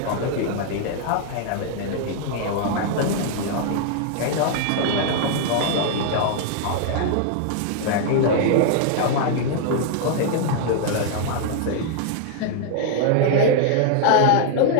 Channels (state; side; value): different; both; correlation 0.00